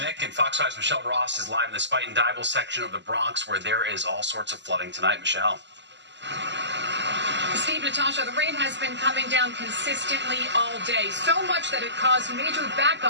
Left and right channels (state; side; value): late; left; 0.52 ms